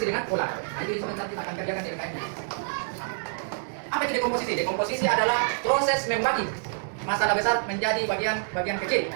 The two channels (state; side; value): silent; left; digital silence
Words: dengan pola. Jadi sebentar kita akan kerjakan di LKM. Apa itu dekomposisi? Dekomposisi adalah proses membagi masalah besar menjadi bagian kecil